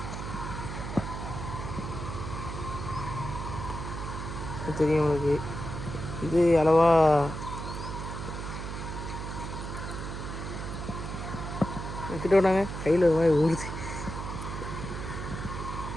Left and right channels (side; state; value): right; noise; hum, 6 dB below the sound